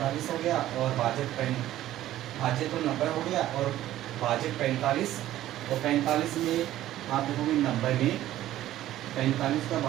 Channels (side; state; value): left; quieter; 13.8 dB